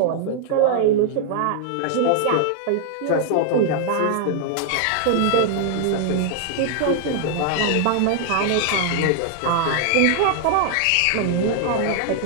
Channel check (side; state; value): both; different; correlation 0.00